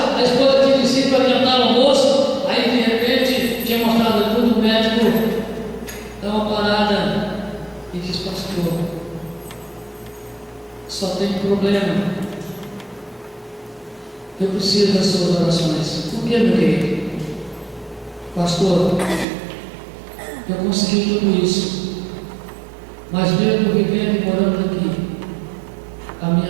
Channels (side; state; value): left; drops out; at 19.2 s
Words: a esposa tinha descido para adiantar o almoço, aí de repente tinha mostrado tudo, o médico dá uma parada e diz: pastor, só tem problema, eu preciso das suas orações. Por que, meu querido? Pastor, eu consegui tudo isso, mas mesmo vivendo e morando aqui, a